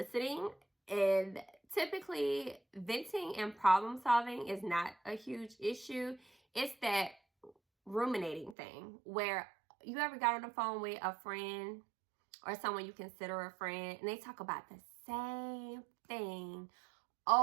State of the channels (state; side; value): drops out; left; at 8.6 s